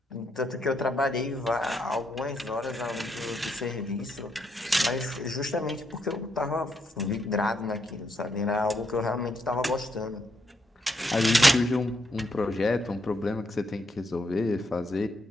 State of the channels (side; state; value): both; normal; correlation 0.77